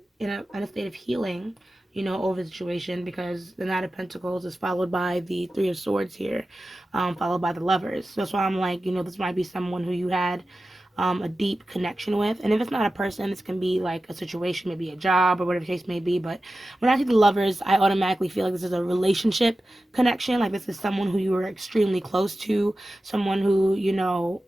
in a state of healing, over the situation, because the Knight of Pentacles is followed by the Three of Swords here, followed by the Lovers. So that's why I'm like, this might be someone who you had a deep connection with. And if it's not a person, this can be like a situation, maybe a job or whatever the case may be. But when I see the Lovers, I automatically feel like this is a relationship connection. Like this is someone who you were extremely close to, someone who,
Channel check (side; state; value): both; normal; correlation 0.94